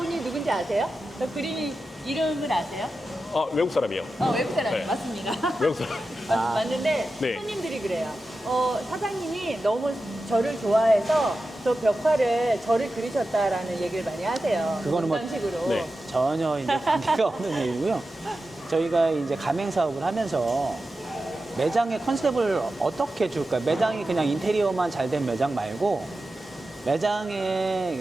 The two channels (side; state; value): both; normal; correlation 0.92